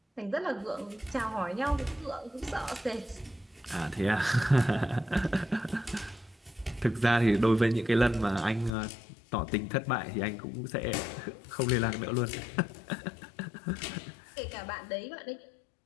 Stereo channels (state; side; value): drops out; right; at 8.7 s